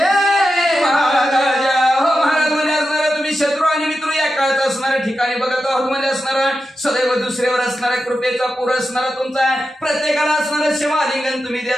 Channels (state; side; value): normal; both; correlation 0.90